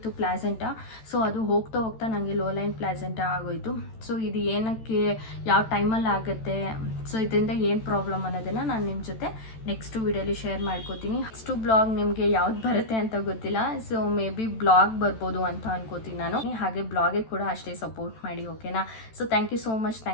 ಪ್ಲಾಸೆಂಟಾ, ಸೊ ಅದು ಹೋಗ್ತಾ ಹೋಗ್ತಾ ನನಗೆ ಲೋ ಲೈನ್ ಪ್ಲಾಸೆಂಟಾ ಆಗೋಯಿತು. ಸೊ ಇದು ಏನಕ್ಕೆ, ಯಾವ ಟೈಮಲ್ಲಿ ಆಗುತ್ತೆ, ಸೊ ಇದರಿಂದ ಏನು ಪ್ರಾಬ್ಲಮ್ ಅನ್ನೋದನ್ನು ನಾನು ನಿಮ್ಮ ಜೊತೆ ನೆಕ್ಸ್ಟ್ ವೀಡಿಯೋಲಿ ಶೇರ್ ಮಾಡ್ಕೋತೀನಿ. ನೆಕ್ಸ್ಟು ಬ್ಲಾಗ್ ನಿಮಗೆ ಯಾವ್ದು ಬರುತ್ತೆ ಅಂತ ಗೊತ್ತಿಲ್ಲ. ಸೊ ಮೇ ಬಿ ಬ್ಲಾಗ್ ಬರ್ಬೋದು ಅಂತ ಅನ್ಕೋತೀನಿ ನಾನು. ಹಾಗೆ ಬ್ಲಾಗಿಗೆ ಕೂಡ ಅಷ್ಟೇ ಸಪೋರ್ಟ್ ಮಾಡಿ, ಓಕೆನಾ. So thank you so much.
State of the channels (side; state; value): right; late; 14 ms